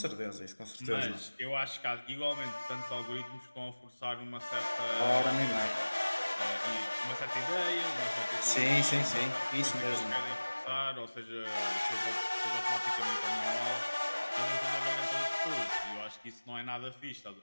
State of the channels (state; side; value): inverted; both; correlation -1.00